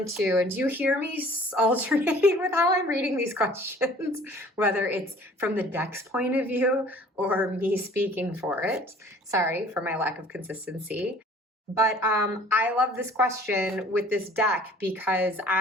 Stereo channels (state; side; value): normal; both; correlation 0.52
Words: to? And do you hear me alternating with how I'm reading these questions, whether it's from the deck's point of view or me speaking for it? Sorry for my lack of consistency. But I love this question with this deck because